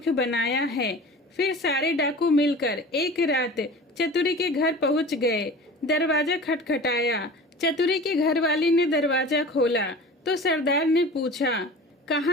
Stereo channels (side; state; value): both; normal; correlation 0.38